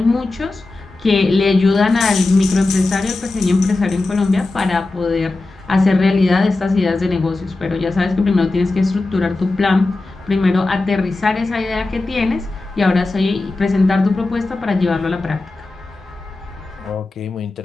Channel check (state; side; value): quieter; right; 3.2 dB